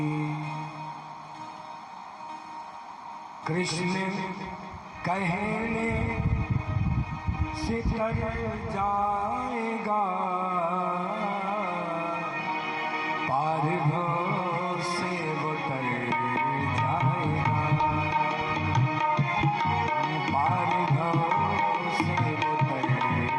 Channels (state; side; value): identical; both; correlation 1.00